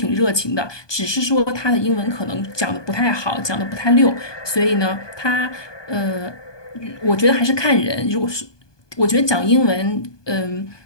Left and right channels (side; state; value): right; late; 1.2 ms